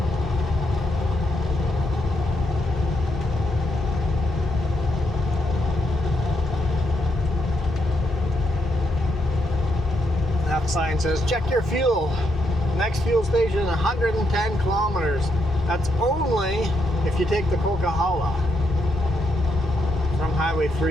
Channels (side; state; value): both; normal; correlation 0.79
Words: Sign says check your fuel. Next fuel station 110 kilometers. That's only if you take the Coquihalla from Highway